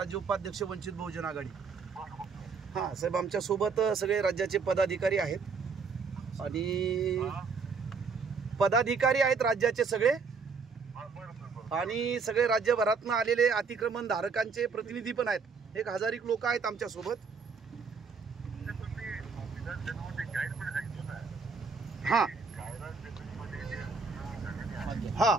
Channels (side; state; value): left; quieter; 5.1 dB